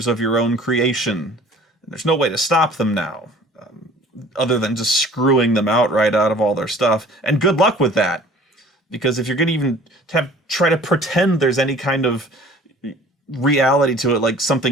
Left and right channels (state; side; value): normal; both; correlation 0.49